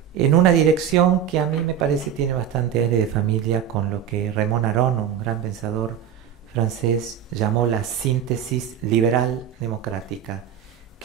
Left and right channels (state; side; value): quieter; left; 8.9 dB